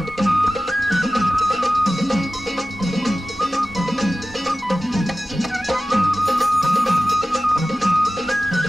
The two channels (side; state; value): both; normal; correlation 0.95